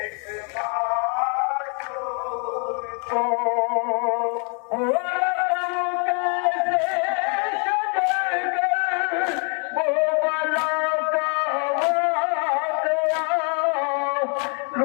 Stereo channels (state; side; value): quieter; right; 38.7 dB